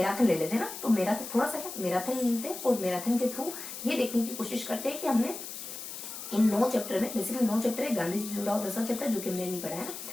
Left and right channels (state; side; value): noise; left; hiss, 9 dB below the sound